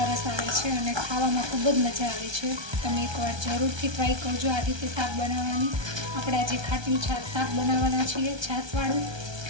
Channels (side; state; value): left; late; 1.3 ms